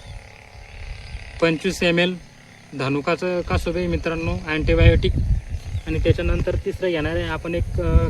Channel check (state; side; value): identical; both; correlation 1.00